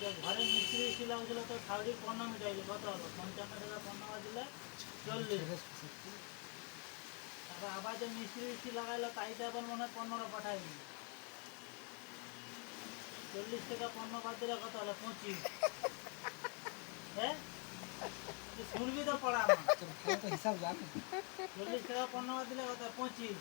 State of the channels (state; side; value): quieter; right; 35.9 dB